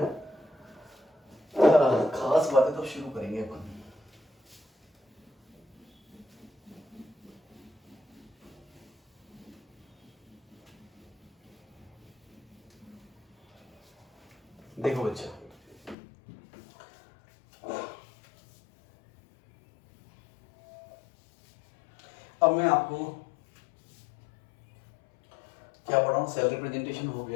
खास बातें तो शुरू करेंगे अपन। देखो बच्चा, अब मैं आपको क्या पढ़ा हूँ, सेल रिप्रेजेंटेशन हो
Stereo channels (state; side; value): drops out; right; at 16.0 s